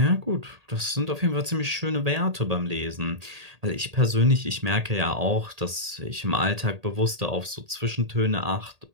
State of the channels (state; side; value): late; left; 1.8 ms